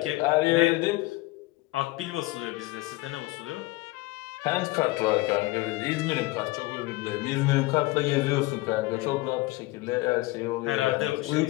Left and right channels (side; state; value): right; quieter; 20.5 dB